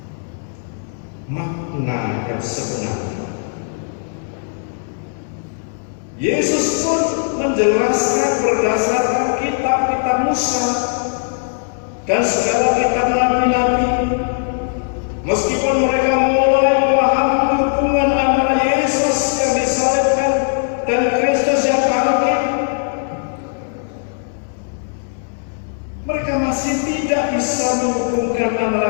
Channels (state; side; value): silent; right; digital silence